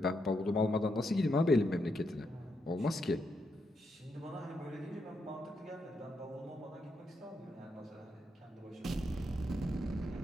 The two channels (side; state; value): both; normal; correlation 0.81